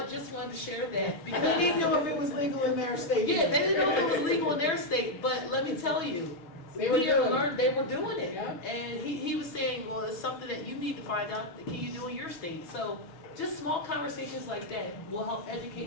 just wanted to share that because they didn't know if it was legal in their state. Yeah, they didn't know if it was legal in their state, but let me tell you, they were doing it. Yeah. And he was saying, well, it's something that you need to find out, can you do in your state? So just small conversations like that will help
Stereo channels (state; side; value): late; right; 6.1 ms